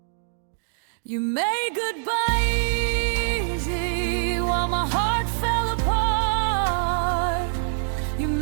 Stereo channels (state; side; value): silent; left; digital silence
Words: You made goodbye easy while my heart fell apart. You